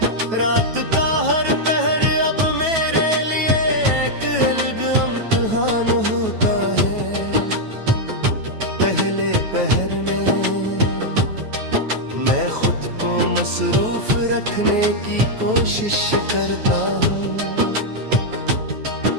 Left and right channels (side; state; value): left; late; 9.2 ms